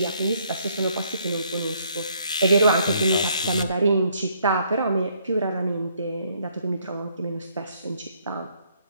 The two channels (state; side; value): inverted; both; correlation -0.68